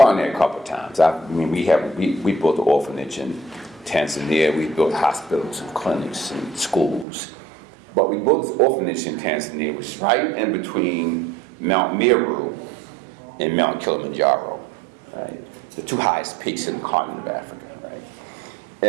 there a couple of times. We built an orphanage in Tanzania. We built hospitals and clinics and schools. But we built this orphanage in Tanzania, which is right in between Mount Meru and Mount Kilimanjaro, right? The two highest peaks in the continent of Africa, right?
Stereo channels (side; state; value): left; drops out; at 7.1 s